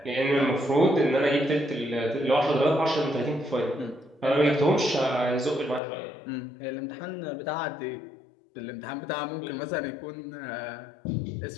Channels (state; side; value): drops out; right; at 5.8 s